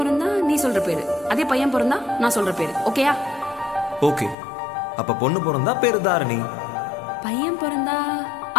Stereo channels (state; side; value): drops out; right; at 4.4 s